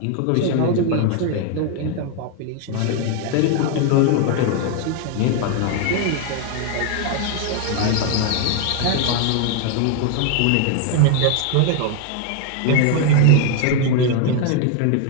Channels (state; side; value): different; both; correlation 0.01